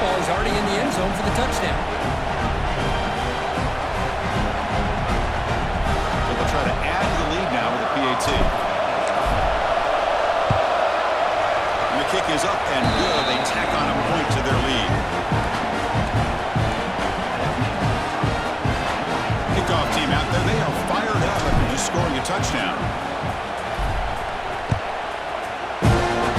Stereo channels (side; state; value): both; identical; correlation 1.00